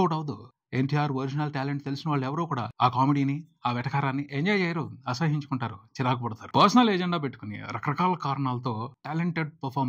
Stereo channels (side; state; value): both; identical; correlation 1.00